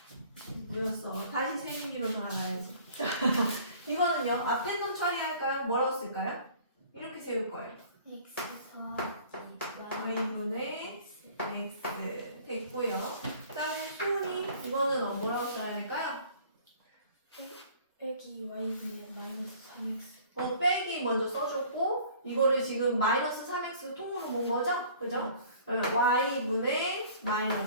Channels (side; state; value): both; inverted; correlation -0.51